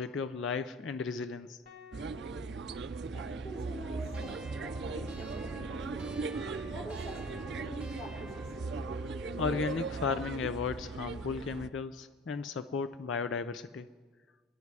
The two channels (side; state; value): both; normal; correlation 0.41